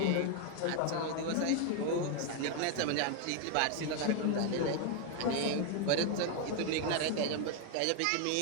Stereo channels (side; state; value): both; different; correlation 0.01